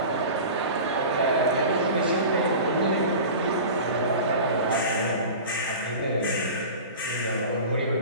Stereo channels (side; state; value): both; inverted; correlation -0.35